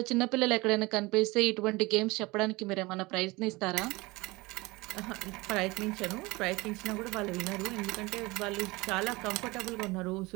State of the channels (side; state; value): left; quieter; 22.7 dB